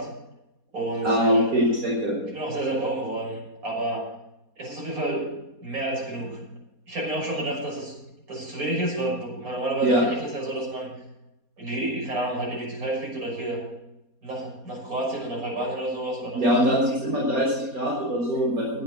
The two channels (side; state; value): left; late; 4.2 ms